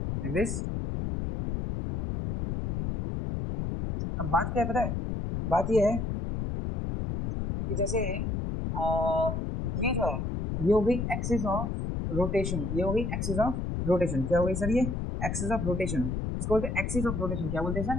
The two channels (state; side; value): noise; left; rumble, 2 dB below the sound